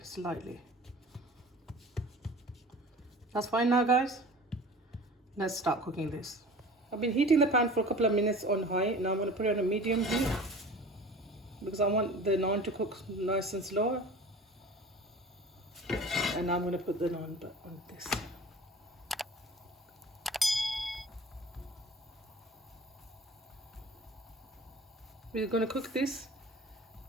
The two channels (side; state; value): both; normal; correlation 0.41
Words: slightly. That's fine now, guys. Let's start cooking this. I've been heating the pan for a couple of minutes on high. Now I'm going to put it on a medium heat because I want the naan to cook nice and slow. And now I'm going to put the naan on this. We're going to cook this